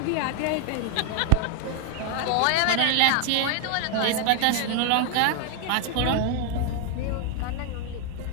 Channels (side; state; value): both; different; correlation 0.00